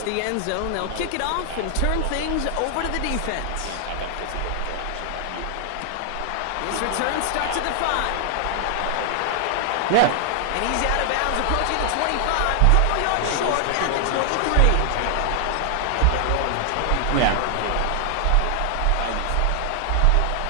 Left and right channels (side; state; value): both; different; correlation 0.00